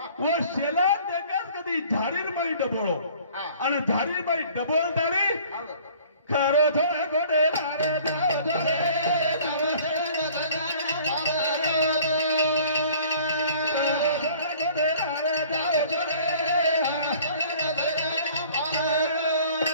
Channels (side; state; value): both; inverted; correlation -0.51